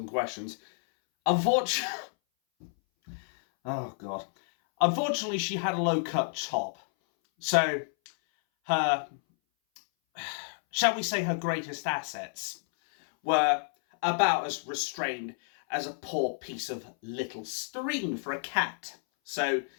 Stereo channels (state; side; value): silent; right; 58 dB below the other